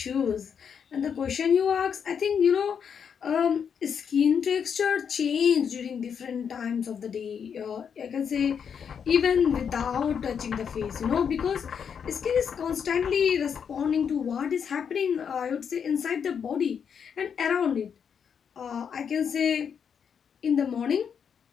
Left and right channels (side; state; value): right; quieter; 7.2 dB